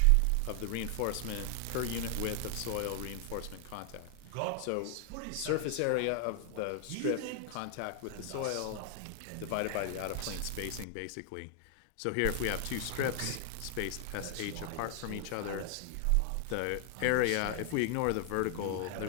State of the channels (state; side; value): different; both; correlation 0.00